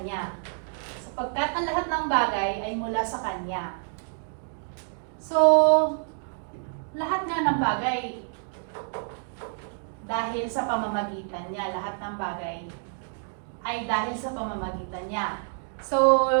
Sapagkat ang lahat ng bagay ay mula sa Kanya. So, lahat nga ng bagay, dahil sa pamamagitan niya, lahat ng bagay ay dahil sa pamamagitan niya. So,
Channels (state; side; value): silent; left; 59 dB below the other